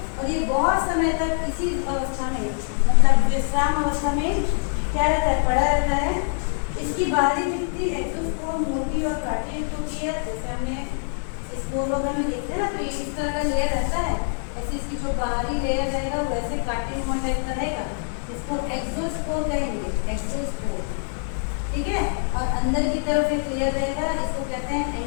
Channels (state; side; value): silent; right; 58 dB below the other